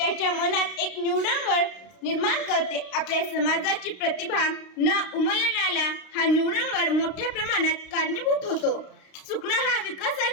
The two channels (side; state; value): right; late; 32 ms